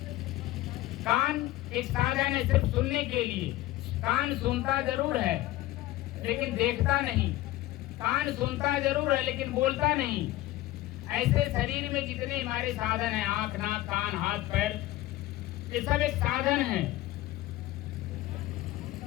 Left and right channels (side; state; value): right; quieter; 16.2 dB